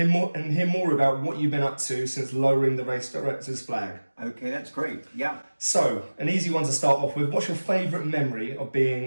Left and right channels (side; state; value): both; inverted; correlation -1.00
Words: more about what you've been up to since lowering the race director's flag. Okay, that's great. Yeah. So, an easy one to start off with. What's your favourite memory of